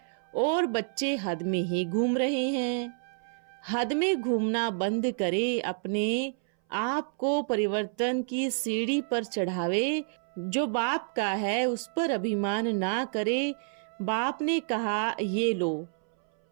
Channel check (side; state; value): left; silent; 59 dB below the other